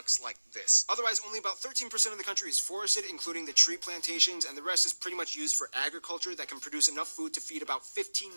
like this. Otherwise, only about 13% of the country is forested, including the tree plantations, and the rest is pretty much used for agriculture that can produce enough food to feed about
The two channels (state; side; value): inverted; both; correlation -1.00